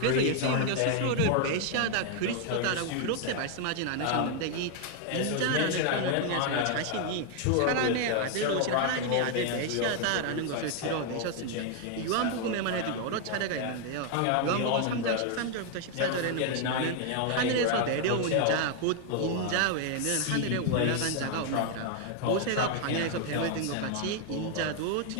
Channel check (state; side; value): different; both; correlation 0.00